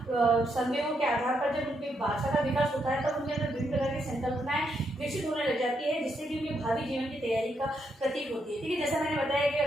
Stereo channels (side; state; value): both; normal; correlation 0.78